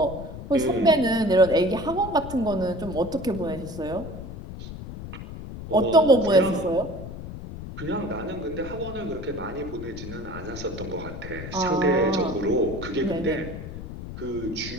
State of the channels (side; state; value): left; noise; rumble, 10 dB below the sound